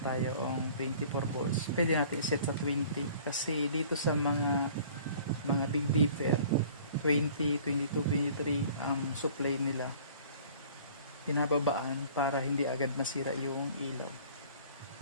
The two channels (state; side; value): inverted; both; correlation -0.50